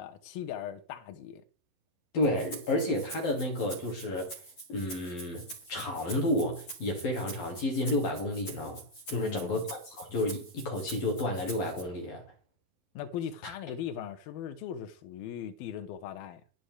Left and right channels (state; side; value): late; right; 11 ms